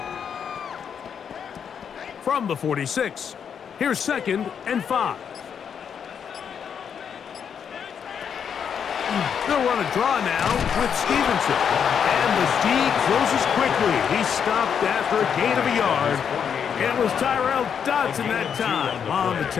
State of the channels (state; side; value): quieter; right; 7.5 dB